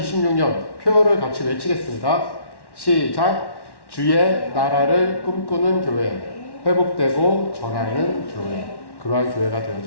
표어를 같이 외치겠습니다. 시작. 주의 나라를 꿈꾸는 교회, 회복되고 전하는 교회, 그러한 교회가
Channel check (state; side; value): late; right; 1.1 ms